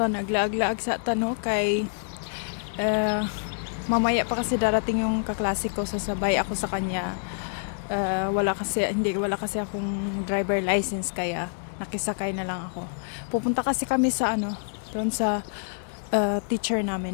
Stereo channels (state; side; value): silent; right; 60 dB below the other